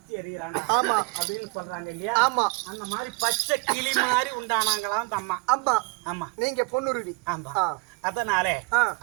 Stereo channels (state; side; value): quieter; left; 27.6 dB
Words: எறிகிறானா அப்படின்னு சொல்றாங்க இல்லையா? ஆமா, அந்த மாதிரி பச்சை கிளி மாதிரி உண்டானாங்களாம் அந்த அம்மா. ஆமா ஆமா, நீங்க பொண்ணுருவி. ஆமா, அதனாலே